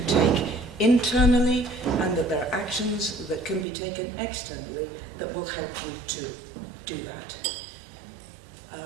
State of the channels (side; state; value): left; drops out; at 3.7 s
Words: take internally and that there are actions that can be taken externally that will help you to do that.